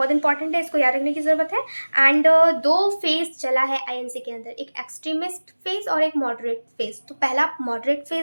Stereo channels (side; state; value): both; inverted; correlation -1.00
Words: इंपॉर्टेंट है, इसको याद रखने की जरूरत है। एंड दो फेज चला है आईएनसी के अंदर, एक एक्सट्रीमिस्ट फेज और एक मॉडरेट फेज। तो पहला मॉडरेट